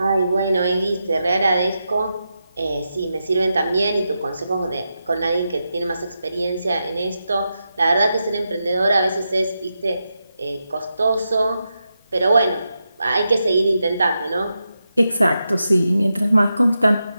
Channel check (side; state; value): both; inverted; correlation -0.88